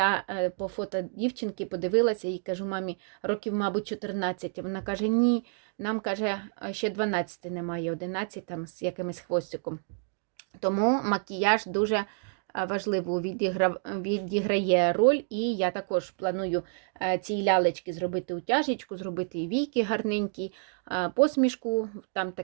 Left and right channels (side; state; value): left; silent; 59 dB below the other